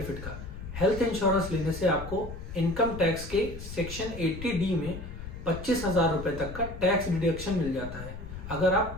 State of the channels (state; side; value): noise; left; rumble, 10 dB below the sound